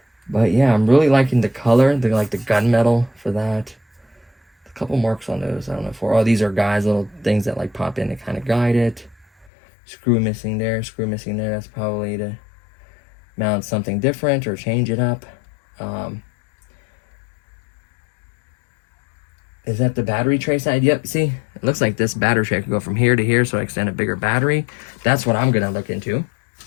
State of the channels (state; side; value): drops out; right; at 9.5 s